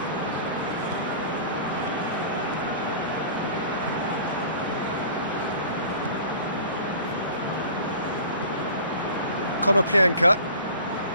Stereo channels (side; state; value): both; inverted; correlation -0.44